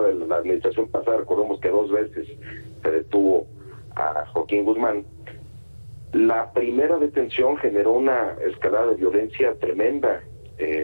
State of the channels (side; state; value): both; inverted; correlation -1.00